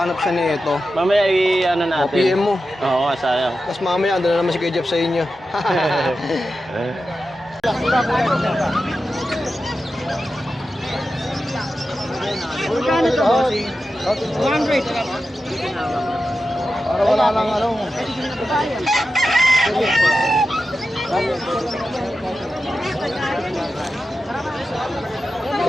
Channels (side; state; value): both; normal; correlation 0.91